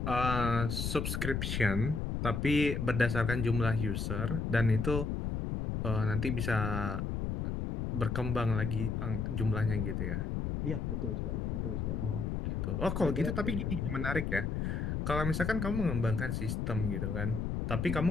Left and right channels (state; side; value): noise; left; rumble, 1 dB below the sound